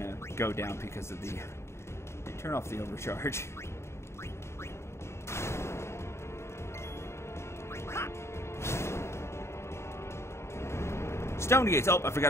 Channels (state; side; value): late; right; 0.13 ms